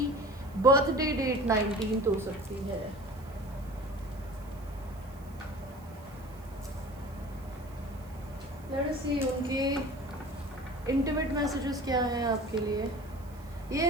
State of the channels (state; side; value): noise; right; hiss, 26 dB below the sound